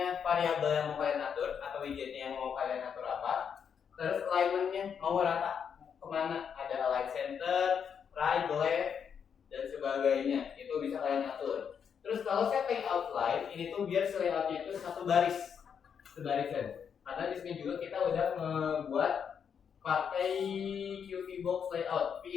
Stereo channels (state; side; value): quieter; right; 7.3 dB